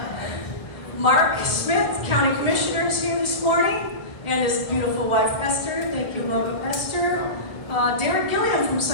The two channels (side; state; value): right; late; 1.5 ms